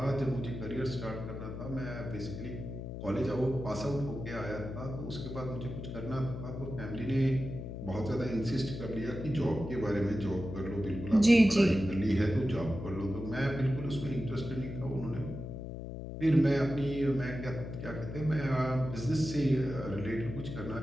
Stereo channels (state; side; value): noise; left; hum, 8 dB below the sound